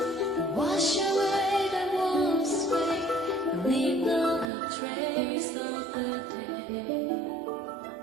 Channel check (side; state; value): left; drops out; at 4.5 s